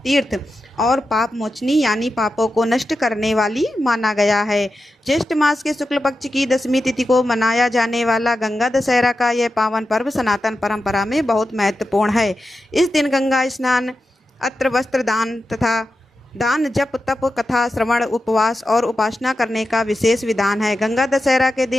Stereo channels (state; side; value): normal; both; correlation 0.90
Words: तीर्थ और पाप मोचनी यानी पापों को नष्ट करने वाली माना गया है। ज्येष्ठ मास के शुक्ल पक्ष की दशमी तिथि को मनाया जाने वाला गंगा दशहरा का यह पावन पर्व सनातन परंपरा में बहुत महत्वपूर्ण है। इस दिन गंगा स्नान, अत्र वस्त्र दान तथा दान, जप, तप, कथा श्रवण, उपवास और उपासना करने का विशेष विधान है। गंगा दशहरा के